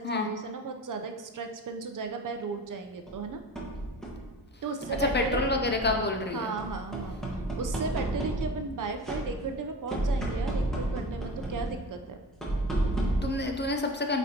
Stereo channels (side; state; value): both; normal; correlation 0.34